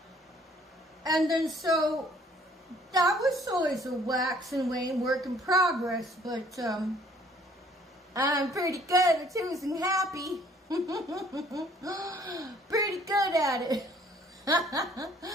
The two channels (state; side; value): normal; both; correlation 0.59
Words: And then so that was always a wax and wane work in progress, but I'm pretty good at choosing happy. Pretty good at it.